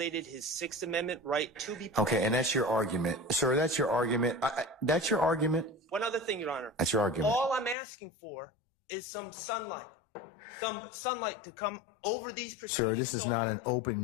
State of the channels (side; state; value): right; drops out; at 7.8 s